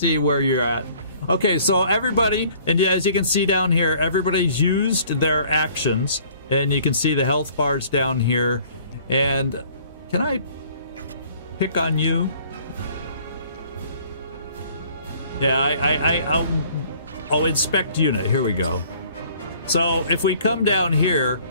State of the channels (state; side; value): inverted; both; correlation -0.55